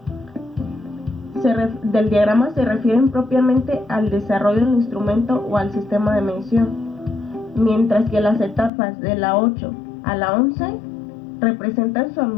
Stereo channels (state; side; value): drops out; right; at 8.7 s